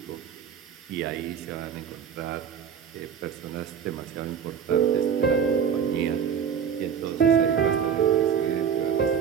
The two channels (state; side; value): quieter; left; 7.6 dB